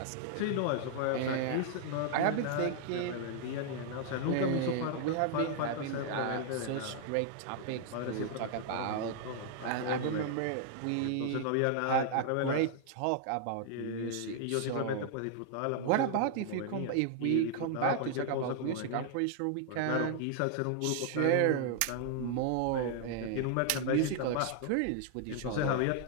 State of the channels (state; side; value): different; both; correlation -0.01